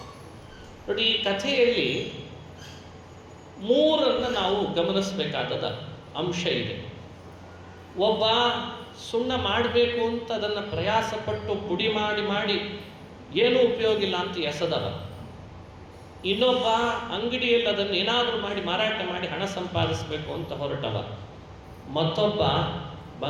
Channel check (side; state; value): both; identical; correlation 1.00